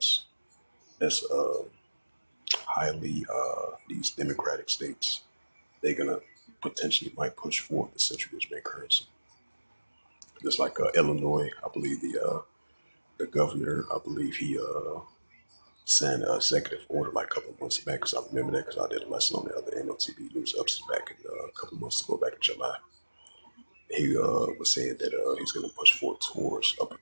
highly these democratic states. They're gonna potentially might push forward the central bank currency. Just like Illinois, I believe the governor, I believe he signed an executive order like a couple of months back. Because I remember that because I did a lesson on the other M.O.T.B news ups back in a couple of months ago, back in July. He was saying that he's going to push forward towards a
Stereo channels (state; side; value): inverted; both; correlation -1.00